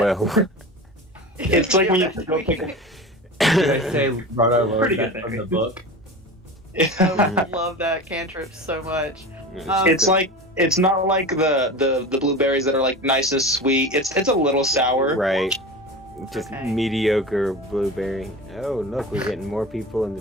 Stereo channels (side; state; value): both; normal; correlation 0.31